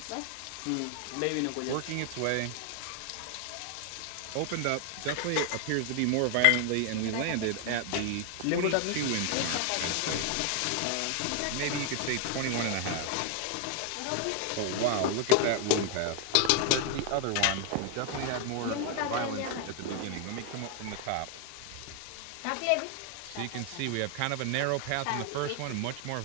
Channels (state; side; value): different; both; correlation 0.00